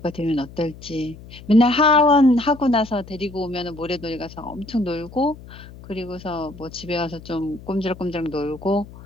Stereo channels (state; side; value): noise; left; hum, 18 dB below the sound